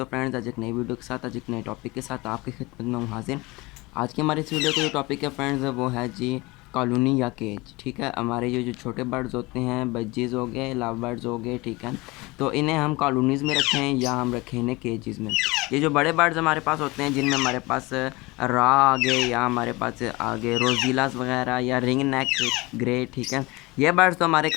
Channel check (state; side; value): quieter; right; 23.1 dB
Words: फ्रेंड्स, आज एक नई वीडियो के साथ, आज एक नए टॉपिक के साथ आपकी खिदमत में हूँ हाजिर। आज की हमारी इस वीडियो का जो टॉपिक है फ्रेंड्स, वो है जी कॉलोनी या केज। ठीक है, हमारे ये जो छोटे बर्ड्स होते हैं, बज्जीज़ हो गए, लव बर्ड्स हो गए, ठीक है, तो इन्हें हम कॉलोनीज़ में रखें या हम रखें इन्हें केजेज़ में। ये जो बड़े बर्ड्स हमारे पास होते हैं, जिनमें हमारे पास रा आगे या हमारे पास आगे रोजीलास वगैरह या रिंग नेक ग्रे, ठीक है, ये बर्ड्स तो हमारे